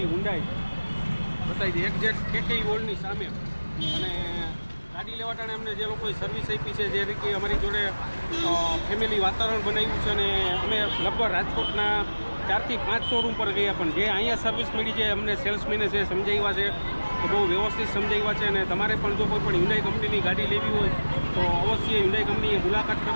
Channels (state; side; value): inverted; both; correlation -1.00